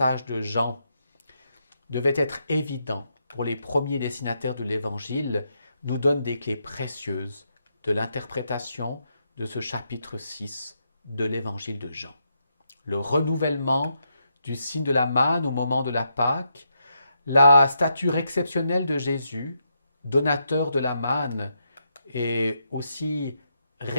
de Jean devaient être évidents pour les premiers destinataires de l'Évangile, nous donnent des clés précieuses de l'interprétation de ce chapitre 6 de l'Évangile de Jean. Le renouvellement du signe de la manne au moment de la Pâque, la stature exceptionnelle de Jésus, donateur de la manne, et aussi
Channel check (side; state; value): both; inverted; correlation -0.81